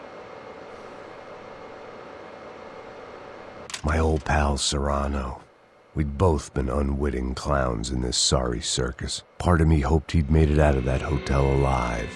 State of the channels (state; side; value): identical; both; correlation 1.00